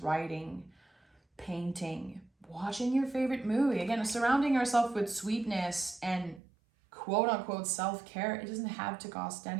painting, watching your favorite movie. Again, surrounding yourself with sweetness and quote unquote self-care, it doesn't have to cost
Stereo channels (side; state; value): left; drops out; at 6.4 s